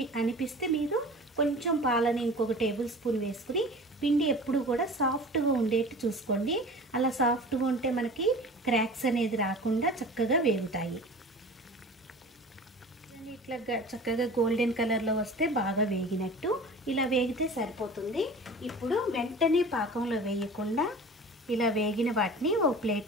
అనిపిస్తే మీరు కొంచెం పాలని ఇంకొక టేబుల్ స్పూన్ వేసుకుని పిండి ఎప్పుడు కూడా సాఫ్ట్గా ఉండేట్టు చూసుకోండి. అలా సాఫ్ట్గా ఉంటే మనకి క్రాక్స్ అనేది రాకుండా చక్కగా వేగుతాయి. ఇట్లా చక్కగా గోల్డెన్ కలర్లో వస్తే బాగా వేగినట్టు. ఇలా వేగితే సరిపోతుంది. ఇప్పుడు వెంటనే పాకంలో వేయకుండా ఇలా వేగిన వాటిని ఓ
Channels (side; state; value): both; normal; correlation 0.39